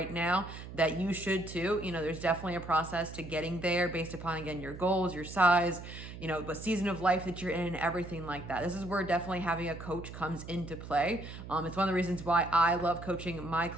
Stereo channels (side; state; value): right; noise; hum, 12 dB below the sound